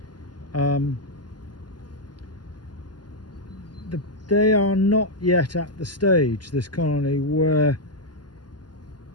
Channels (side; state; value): right; late; 0.70 ms